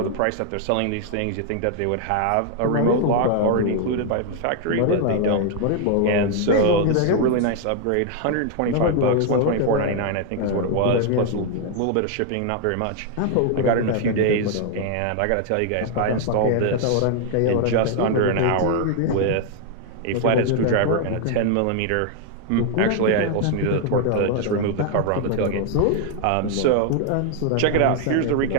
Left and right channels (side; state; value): both; different; correlation 0.00